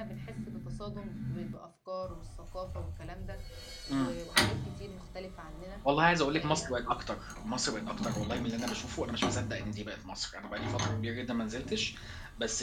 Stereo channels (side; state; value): both; identical; correlation 1.00